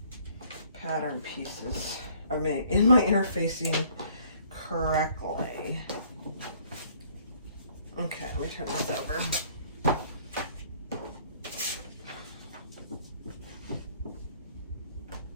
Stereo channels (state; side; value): inverted; both; correlation -0.59